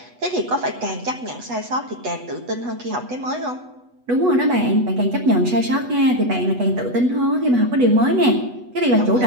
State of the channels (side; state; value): left; late; 8.1 ms